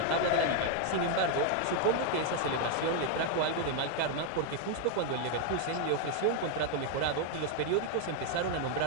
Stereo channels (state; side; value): different; both; correlation 0.00